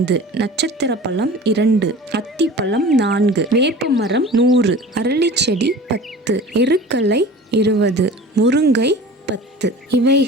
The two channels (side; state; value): both; normal; correlation 0.39